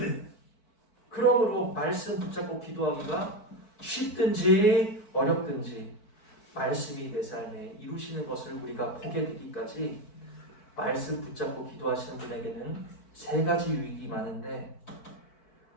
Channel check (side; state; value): right; late; 4.5 ms